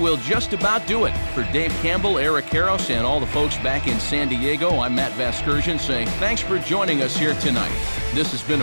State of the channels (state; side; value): inverted; both; correlation -1.00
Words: just about do it. For Dave Campbell, Eric Harros, and all the folks back in San Diego, I'm Matt Vasgersian saying thanks for joining us here tonight. This has been